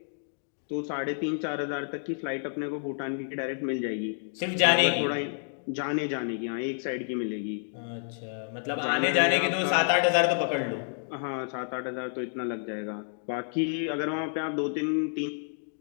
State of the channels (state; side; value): silent; right; digital silence